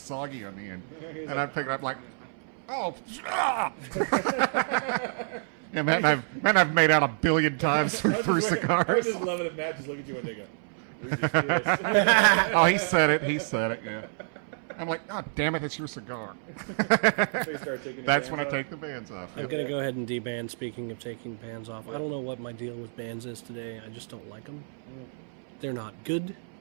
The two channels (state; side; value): silent; left; 59 dB below the other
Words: on the end. He's and like, I'd pick it up like, oh, yeah, Matt and I've made out 1 billion times through cigars. I would just love it if Matt just look at you and they go, we just kissed. Oh, he said it, yeah. I'm like, oh, damn it, it's your cigar. So you start taking your That's bands when I off? take the bands off. I'm going to go ahead and deban. Speaking of taking bands off, I don't know what my deal with bands is today. I just don't like them. They're not good.